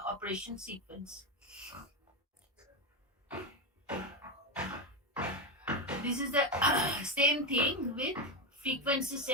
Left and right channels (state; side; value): normal; both; correlation 0.11